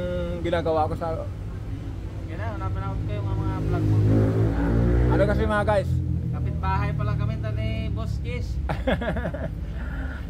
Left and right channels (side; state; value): both; identical; correlation 1.00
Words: ginagawa ko sa... Yan na, napanood ko yung mga vlog mo. Ano kasi mga guys? Kapitbahay pa lang kami ni Boss Kiss.